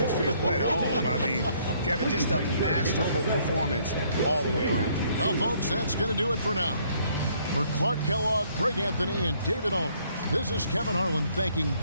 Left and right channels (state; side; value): inverted; both; correlation -0.65